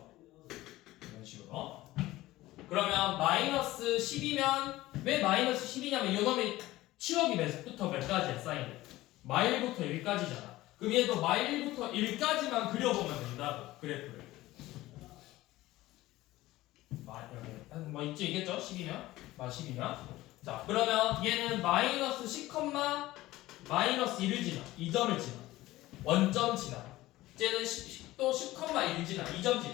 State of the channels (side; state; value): right; quieter; 17.2 dB